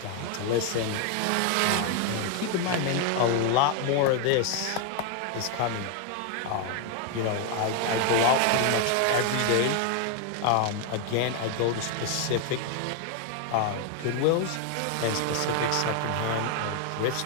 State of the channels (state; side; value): different; both; correlation 0.00